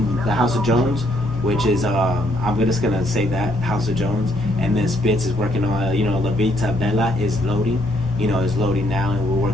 House of Jones, which is I'm just gonna say that House of Jones, and then Spitz is working on La Vita Bella is loading, is loading now, and we're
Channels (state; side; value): normal; both; correlation 0.71